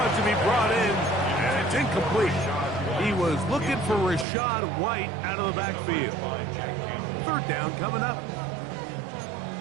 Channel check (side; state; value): left; drops out; at 4.2 s